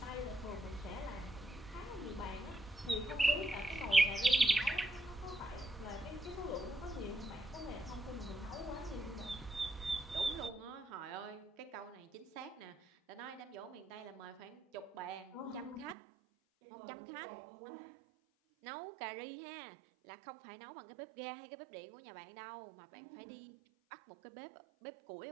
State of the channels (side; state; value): left; drops out; at 16.0 s